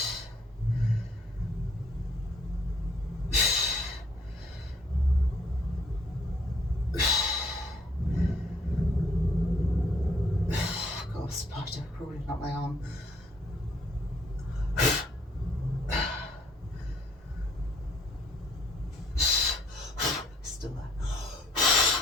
Got a spider crawling up my arm.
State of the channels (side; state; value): both; normal; correlation 0.64